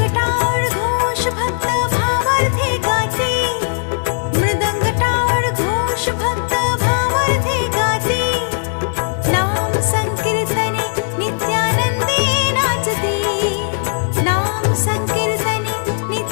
टाळ घोष भक्त भावार्थे गाते मृदंग टाळ घोष भक्त भावार्थे गाते नाम संकीर्तने नित्यानंदे नाचते नाम संकीर्तने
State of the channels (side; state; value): right; silent; 64 dB below the other